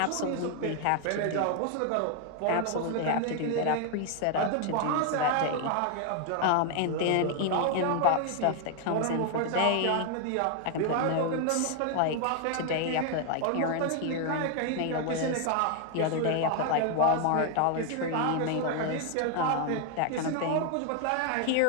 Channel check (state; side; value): different; both; correlation 0.00